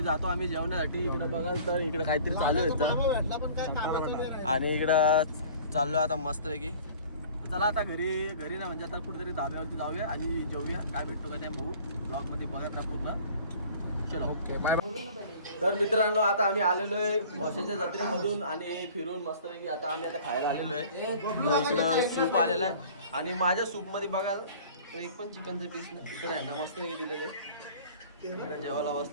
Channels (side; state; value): both; inverted; correlation -0.47